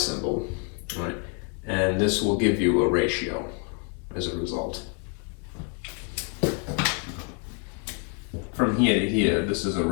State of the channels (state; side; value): quieter; right; 36.3 dB